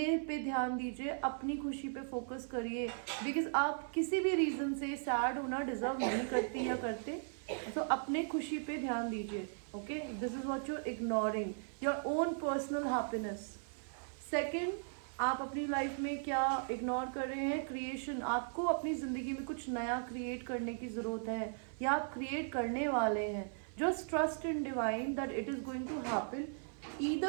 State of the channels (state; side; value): silent; left; 53 dB below the other